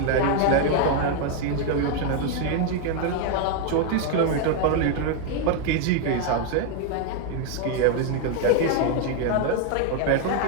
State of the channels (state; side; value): different; both; correlation 0.01